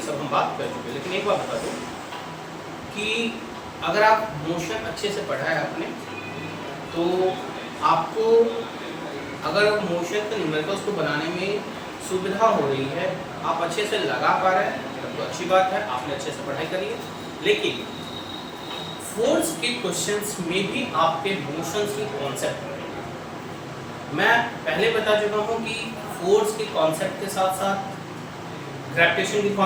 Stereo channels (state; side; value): identical; both; correlation 1.00